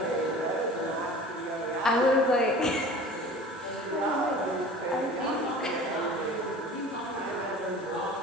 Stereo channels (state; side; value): normal; both; correlation 0.42